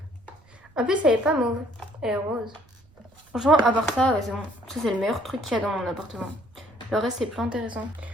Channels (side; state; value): right; noise; rumble, 30 dB below the sound